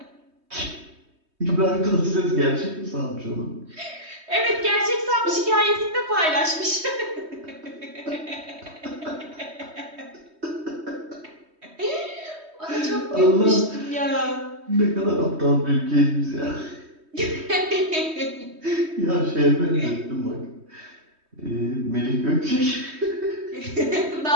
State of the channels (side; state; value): left; late; 3.2 ms